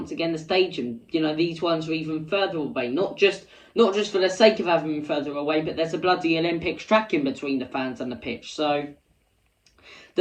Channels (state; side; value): identical; both; correlation 1.00